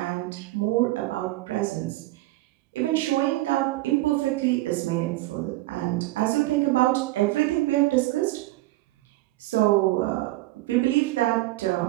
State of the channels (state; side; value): quieter; left; 18.7 dB